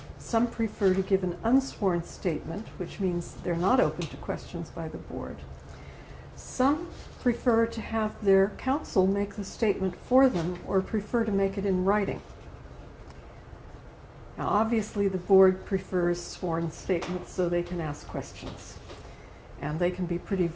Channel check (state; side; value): identical; both; correlation 1.00